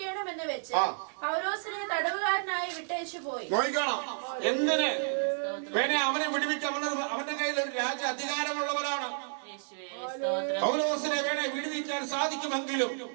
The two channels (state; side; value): silent; left; 57 dB below the other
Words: വെച്ച് പൗലോസിനെ തടവുകാരനായി വിട്ടേച്ചു പോയി. നോക്കണം എന്തിന് അവനെ വിടുവിക്കാൻ. അവന്റെ കയ്യിൽ ഒരു രാജ്യ അധികാരമുള്ളവനാണ്. പൗലോസിനെ വിടുവിക്കാൻ സാധിക്കുമെങ്കിലും